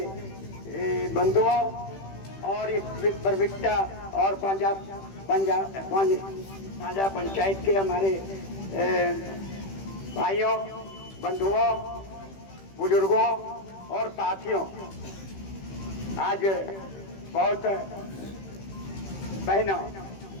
बंधुओं और इस परविट्टा और साझा पंचायत के हमारे भाइयों, बंधुओं, बुजुर्गों और साथियों, आज बहुत बहनों,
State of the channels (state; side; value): late; right; 15 ms